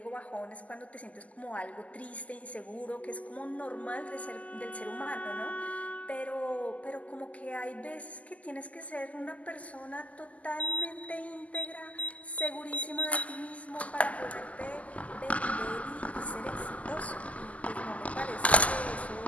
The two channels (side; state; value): right; late; 0.071 ms